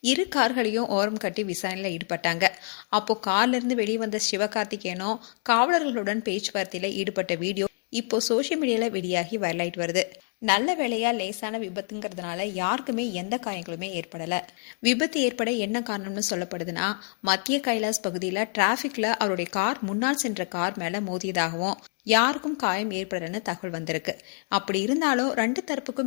இரு கார்களையும் ஓரம் கட்டி விசாரணையில் ஈடுபட்டாங்க. அப்போ கார்ல இருந்து வெளியே வந்த சிவகார்த்திகேயனும் காவலர்களுடன் பேச்சுவார்த்தையில ஈடுபட்ட வீடியோ இப்போ சோசியல் மீடியால வெளியாகி வைரலாயிட்டு வருது. நல்ல வேளையா லேசான விபத்துங்கிறதுனால யாருக்குமே எந்த காயங்களுமே ஏற்படல. விபத்து ஏற்பட என்ன காரணம்னு சொல்லப்படுதுன்னா, மத்திய கைலாஸ் பகுதியில் டிராபிக்ல அவருடைய கார் முன்னால் சென்ற கார் மேல மோதியதாகவும் யாருக்கும் காயம் ஏற்படலன்னு தகவல் வந்திருக்கு. அப்படி இருந்தாலும் ரெண்டு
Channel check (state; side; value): quieter; right; 38.2 dB